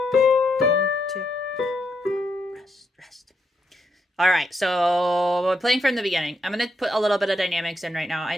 2, rest, rest. All right, so we're playing from the beginning. I'm going to put a little bit of dynamics in right now. I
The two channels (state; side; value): normal; both; correlation 0.80